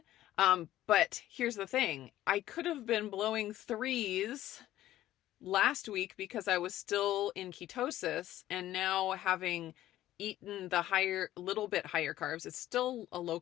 But here's the thing. I could have been blowing 3s last week because I was still in ketosis, and now having eaten the little bit higher carbs, it's still a low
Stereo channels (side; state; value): right; quieter; 13.9 dB